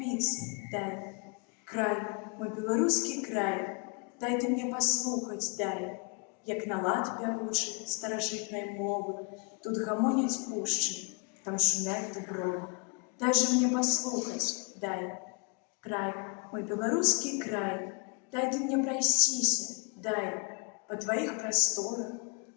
дай, край, мой беларускі край, дай ты мне паслухаць, дай, як на лад пявучы старажытнай мовы, тут гамоняць пушчы, там шумяць дубровы. Дай же мне паслухаць, дай, край, мой беларускі край, дай ты мне прайсціся, дай, па тваіх прасторах,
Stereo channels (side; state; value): right; quieter; 34.2 dB